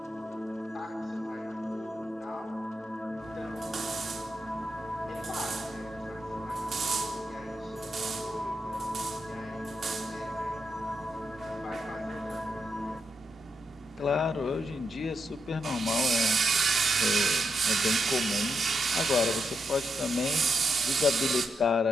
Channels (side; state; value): both; normal; correlation 0.83